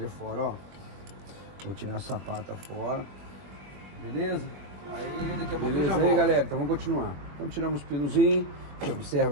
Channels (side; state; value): left; late; 21 ms